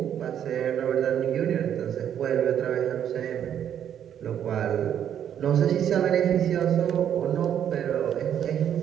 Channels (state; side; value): quieter; left; 9.5 dB